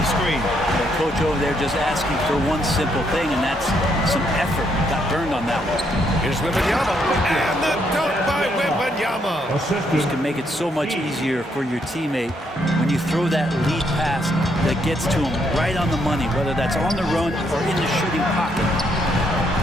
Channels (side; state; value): both; normal; correlation 0.74